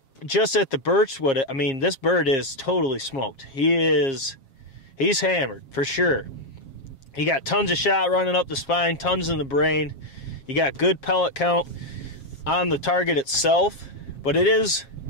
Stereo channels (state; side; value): late; right; 7.4 ms